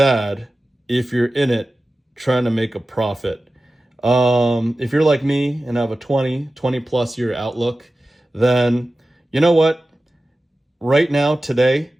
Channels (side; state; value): both; normal; correlation 0.95